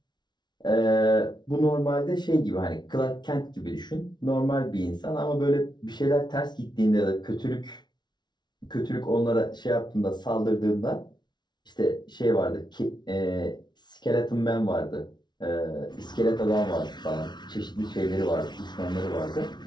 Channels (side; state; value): right; late; 0.20 ms